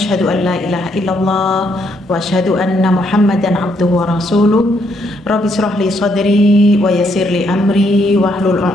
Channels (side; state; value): both; normal; correlation 0.73